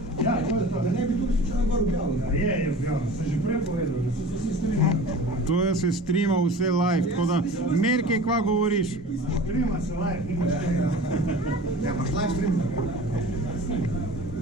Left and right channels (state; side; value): normal; both; correlation 0.39